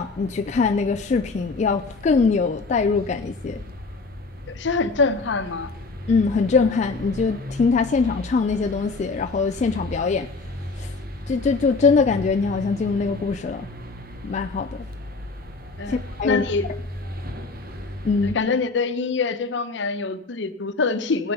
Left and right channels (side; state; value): right; quieter; 4.0 dB